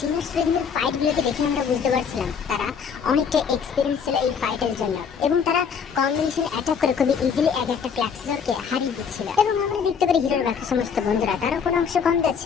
স্টুডেন্টদের ফাইট গুলোকে দেখে আমরা বুঝতে পারছিলাম তারা অনেকটা এক্সপিরিয়েন্স ছিল এই ফাইটের জন্য, এবং তারা কম্বিনেশন অ্যাটাক করে খুবই ইজিলি এক একটা ক্লাক্সেসরকে হারিয়ে দিচ্ছিল। এবং আমরা দেখতে পারি হিরোর বাকি সমস্ত বন্ধুরা তারা কোনো অংশ কম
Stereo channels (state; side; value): quieter; right; 6.6 dB